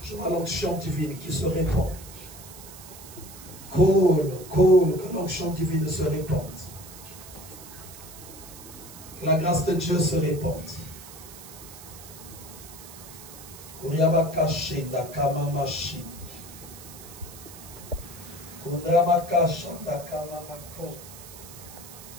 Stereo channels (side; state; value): right; noise; hiss, 16 dB below the sound